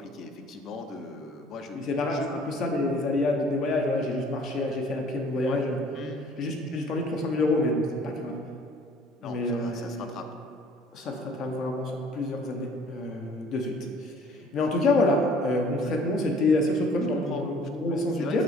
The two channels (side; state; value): both; normal; correlation 0.54